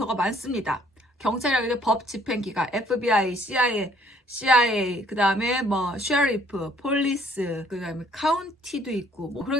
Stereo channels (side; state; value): both; normal; correlation 0.62